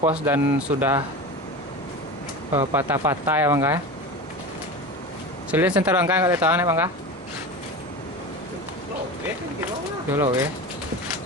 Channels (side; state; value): both; normal; correlation 0.28